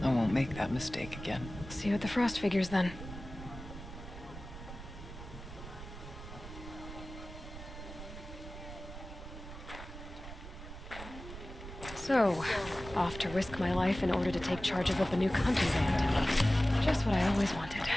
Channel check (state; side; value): noise; right; rumble, 12 dB below the sound